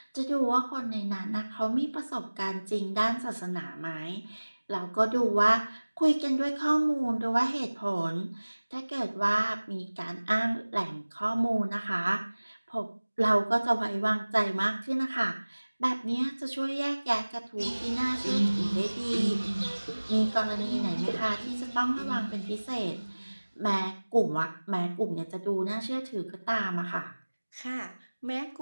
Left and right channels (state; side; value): inverted; both; correlation -1.00